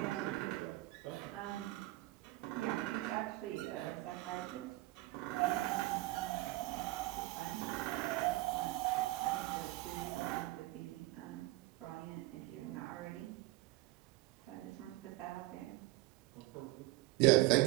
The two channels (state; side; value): quieter; left; 19.1 dB